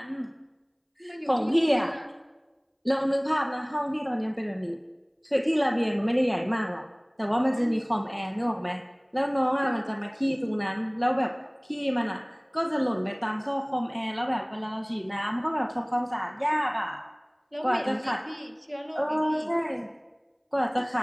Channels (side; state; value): both; identical; correlation 1.00